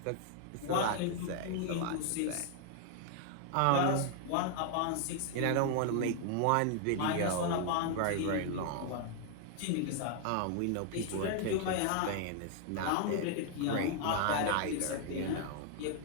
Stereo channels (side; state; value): both; different; correlation 0.00